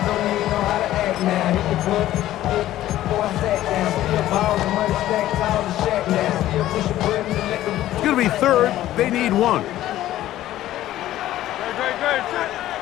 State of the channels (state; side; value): quieter; right; 13.9 dB